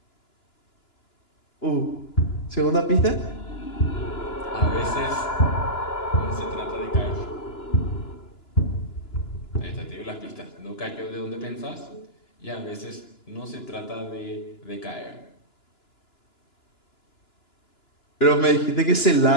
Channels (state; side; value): late; right; 2.9 ms